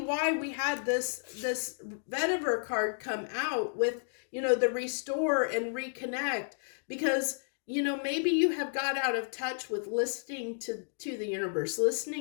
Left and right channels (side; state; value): right; silent; digital silence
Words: we had this vetiver card come out with, you know, the restore and reconnect, because, you know, maybe you have got out of touch with listening to the universe,